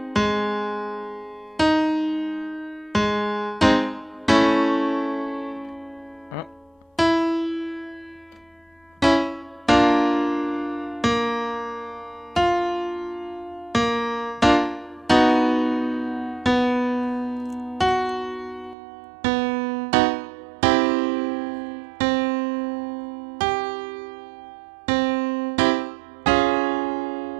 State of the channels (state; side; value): drops out; left; at 18.8 s